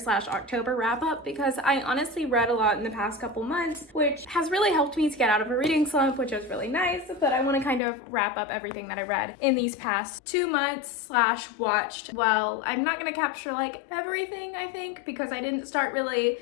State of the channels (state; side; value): drops out; right; at 7.8 s